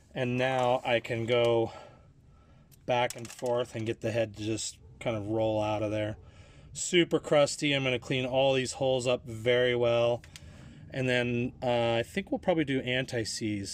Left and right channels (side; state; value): both; identical; correlation 1.00